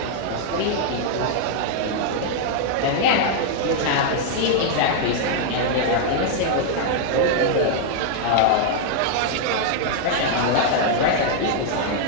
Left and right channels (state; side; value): different; both; correlation 0.00